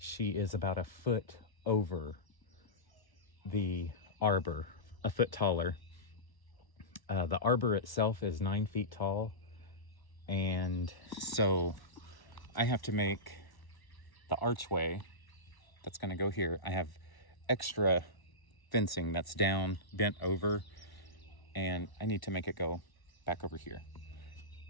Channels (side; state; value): right; late; 1.1 ms